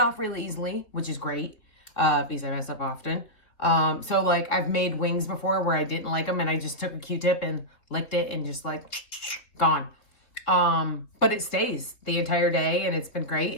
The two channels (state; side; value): late; right; 3.8 ms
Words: really easily, which is great, because I mess up often. So like I've made wings before where I didn't like them and I just took a Q-tip and licked it and just like gone. But it stays the entire day and it's been great,